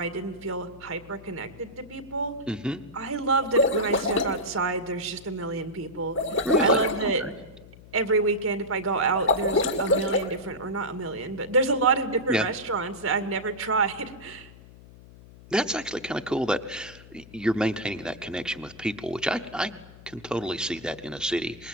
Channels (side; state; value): left; noise; hum, 20 dB below the sound